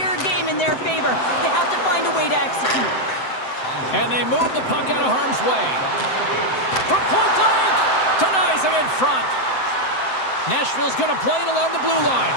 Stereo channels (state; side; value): late; right; 7.8 ms